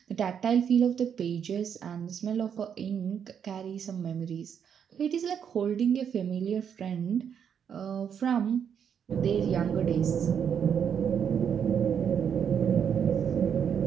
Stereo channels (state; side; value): quieter; left; 7.9 dB